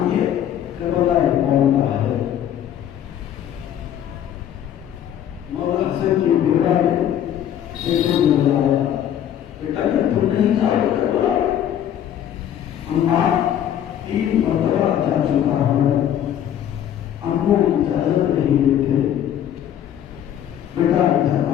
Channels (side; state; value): right; quieter; 10.4 dB